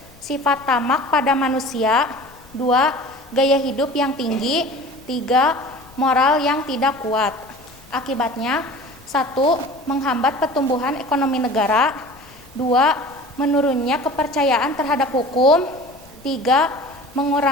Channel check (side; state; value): left; noise; rumble, 25 dB below the sound